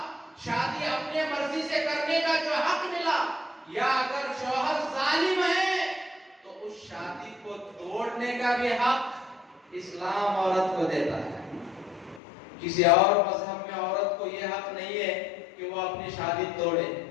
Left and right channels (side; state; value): right; drops out; at 12.2 s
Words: شادی اپنے مرضی سے کرنے کا جو حق ملا، یا اگر شوہر ظالم ہے تو اس شادی کو توڑنے کا بھی حق اسلام عورت کو دیتا ہے۔ کسی اور مذہب میں عورت کو یہ حق نہیں ہے کہ وہ اپنی شادی توڑے،